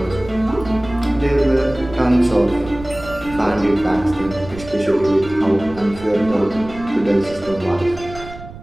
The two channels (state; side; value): noise; right; rumble, 15 dB below the sound